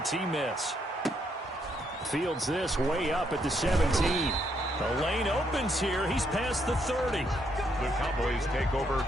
miss. Fields this way up at the 17. The lane opens here. He's past the 30. The Cowboys take over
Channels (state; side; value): normal; both; correlation 0.75